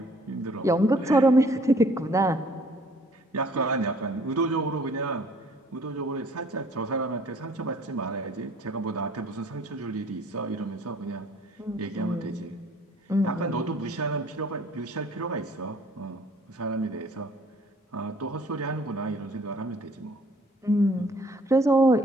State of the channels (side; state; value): both; normal; correlation 0.57